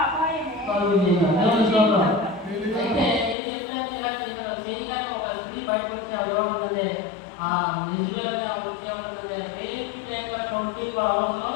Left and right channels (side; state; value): right; drops out; at 3.4 s